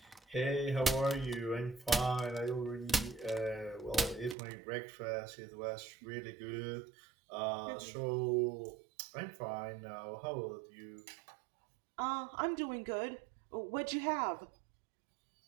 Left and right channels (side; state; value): left; drops out; at 4.4 s